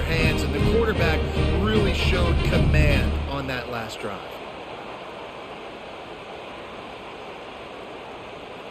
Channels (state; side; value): identical; both; correlation 1.00